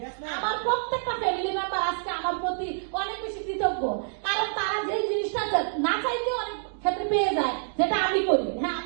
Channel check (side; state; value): left; silent; digital silence